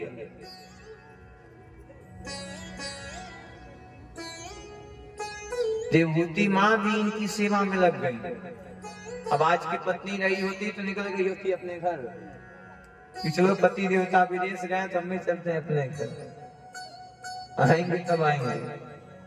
देवहूति माँ भी इनकी सेवा में लग गई। अब आज की पत्नी रही होती तो निकल गई होती अपने घर कि चलो पति देवता विदेश गए तो हम भी चलते हैं अपने घर, आएंगे तब आएंगे।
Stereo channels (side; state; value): both; identical; correlation 1.00